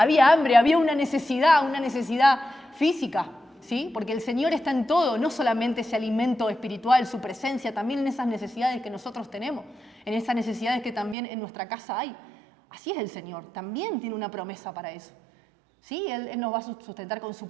hambre, había una necesidad física, ¿sí? Porque el Señor está en todo, no solamente ese alimento espiritual, su presencia, también en esas necesidades que nosotros tenemos, en esas necesidades que también en nuestra casa hay. Así es el Señor, también tiene una promesa para eso. Sí, Él nos va a sustentar con su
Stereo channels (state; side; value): drops out; left; at 11.2 s